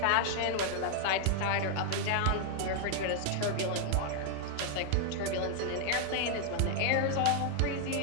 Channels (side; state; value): both; different; correlation 0.00